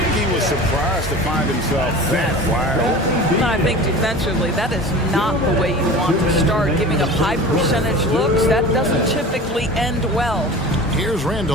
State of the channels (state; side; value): normal; both; correlation 0.37